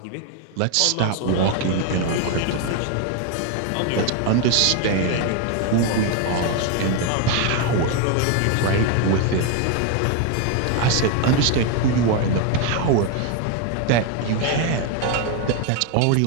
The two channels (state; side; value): different; both; correlation 0.01